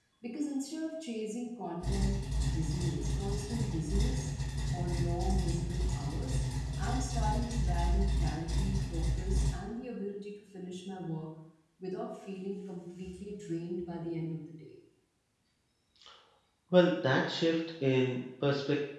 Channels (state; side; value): identical; both; correlation 1.00